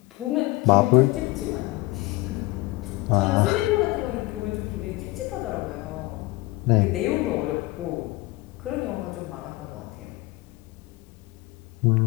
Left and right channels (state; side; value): quieter; right; 20.7 dB